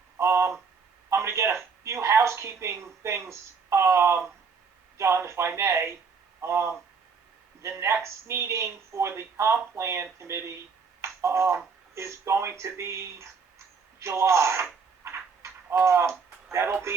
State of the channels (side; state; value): left; quieter; 5.4 dB